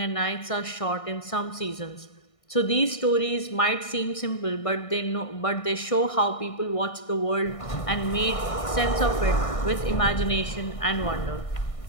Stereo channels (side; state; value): right; late; 1.6 ms